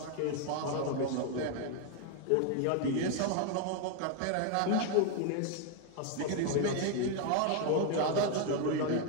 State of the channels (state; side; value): different; both; correlation 0.01